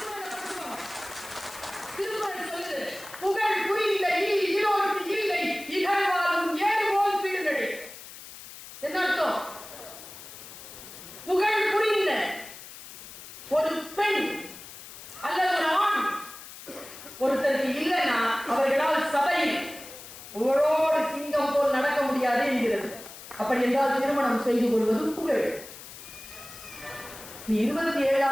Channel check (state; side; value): noise; left; hiss, 15 dB below the sound